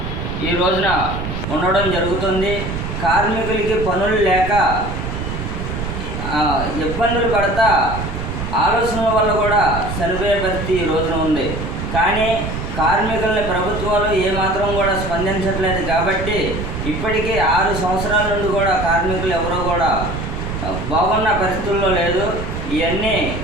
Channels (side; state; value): right; noise; rumble, 5 dB below the sound